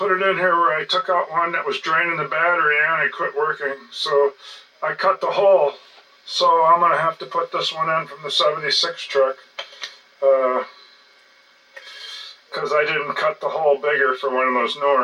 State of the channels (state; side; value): identical; both; correlation 1.00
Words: it in here where I took out one that was draining the battery and it quit working. So I cut the hole. So I'm going to have to put this one in from the 76 truck. Because I didn't cut the hole bigger for one of those